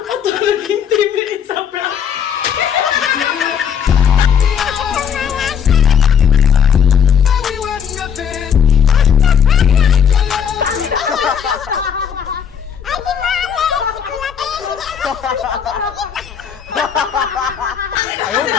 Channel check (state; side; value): quieter; right; 7.8 dB